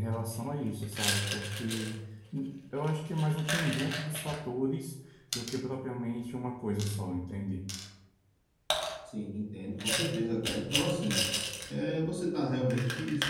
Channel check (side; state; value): both; identical; correlation 1.00